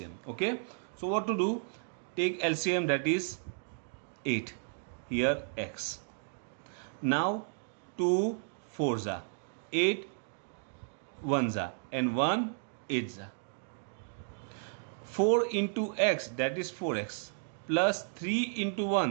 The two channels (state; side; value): silent; left; digital silence